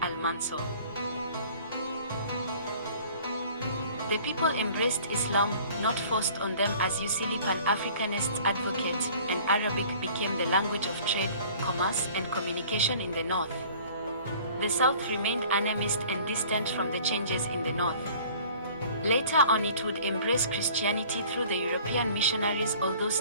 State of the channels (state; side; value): inverted; both; correlation -0.50